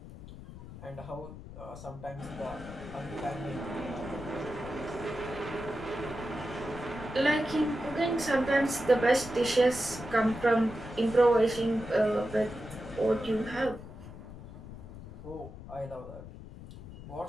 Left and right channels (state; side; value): noise; left; rumble, 14 dB below the sound